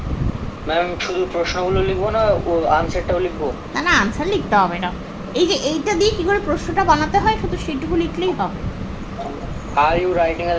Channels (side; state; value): both; identical; correlation 1.00